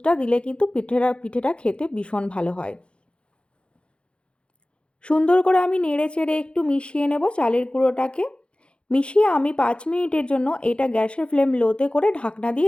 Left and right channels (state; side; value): late; right; 0.057 ms